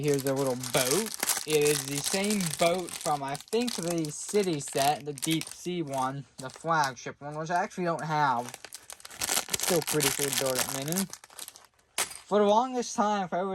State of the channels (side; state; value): both; identical; correlation 1.00